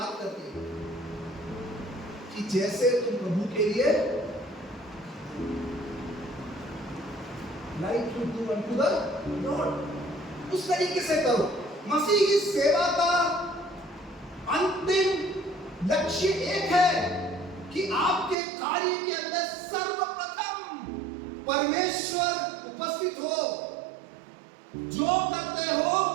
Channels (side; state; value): left; drops out; at 18.4 s